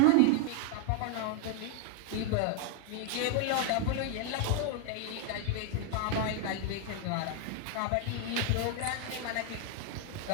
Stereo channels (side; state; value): both; different; correlation 0.01